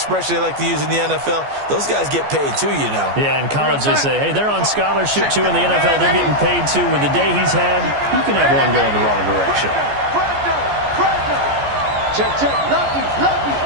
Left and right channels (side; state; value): left; late; 14 ms